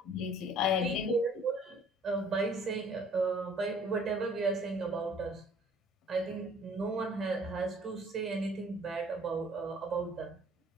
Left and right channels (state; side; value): normal; both; correlation 0.55